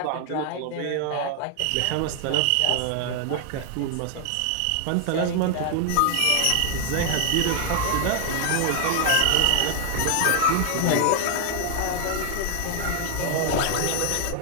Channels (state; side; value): different; both; correlation 0.01